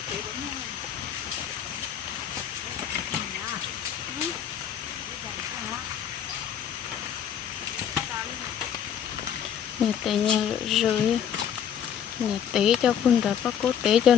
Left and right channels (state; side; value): quieter; right; 8.9 dB